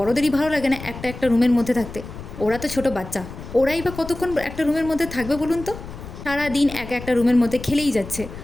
ভালো লাগে না একটা একটা রুমের মধ্যে থাকতে। ওরা তো ছোট বাচ্চা, ওরাই বা কতক্ষণ একটা রুমের মধ্যে থাকবে বলুন তো? সারা দিন এক একটা রুমের মধ্যে খেলেই যাচ্ছে,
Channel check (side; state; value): left; noise; rumble, 12 dB below the sound